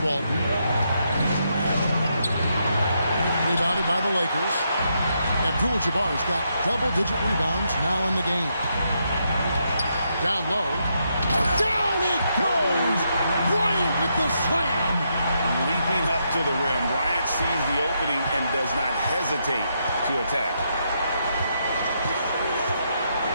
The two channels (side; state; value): both; inverted; correlation -0.79